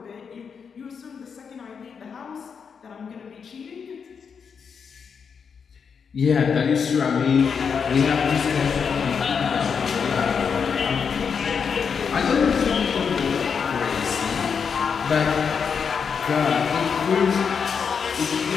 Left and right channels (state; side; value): quieter; right; 6.3 dB